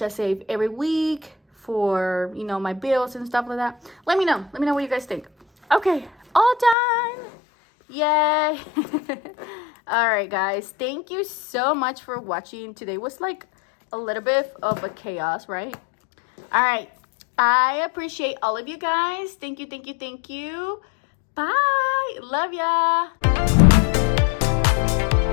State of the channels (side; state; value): right; drops out; at 6.8 s